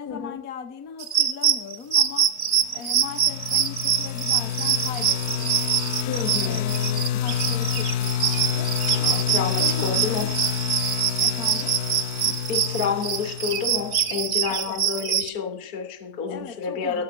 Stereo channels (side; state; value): right; late; 3.6 ms